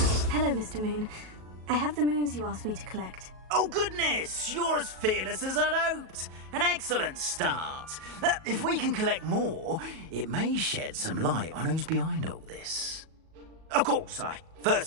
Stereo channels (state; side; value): late; left; 37 ms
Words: Hello, Mr. Moon. I have the moons you asked me to collect. Oh, goodness! You're as fearless as I'd hoped. An excellent start. If we can collect more, it may shed some light on who's behind all this. Of course, I